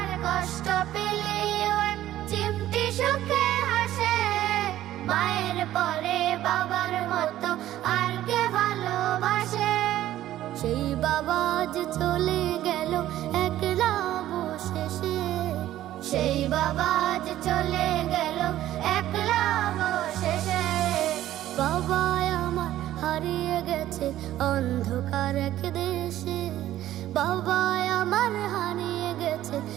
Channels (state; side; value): quieter; left; 13.5 dB